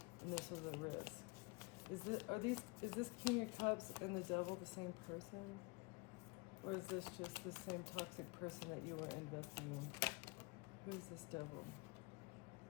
and this was a risk. Is this King of Cups and the devil the same person? Or is this just the same toxic person that you were investing in? Who is this devil?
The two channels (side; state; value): right; quieter; 27.5 dB